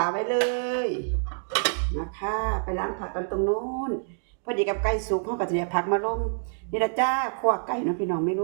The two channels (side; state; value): left; silent; digital silence